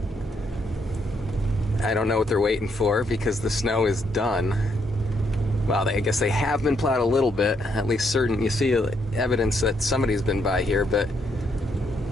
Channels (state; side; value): normal; both; correlation 0.74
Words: I don't know what they're waiting for because the snow is done. Well, I guess they have been plowed a little bit, at least certain. You see evidence that somebody's been by here, but